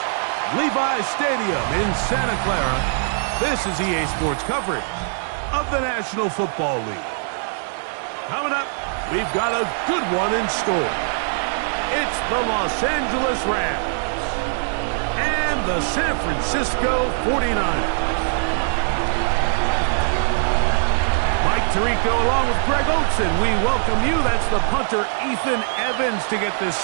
Levi's Stadium in Santa Clara, this is EA Sports coverage of the National Football League. Coming up, we've got a good one in store. It's the Los Angeles Rams and the San Francisco 49ers. Mike Tirico along with Greg Olson, we welcome you. That's the punter Ethan Evans to get this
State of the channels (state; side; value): silent; left; digital silence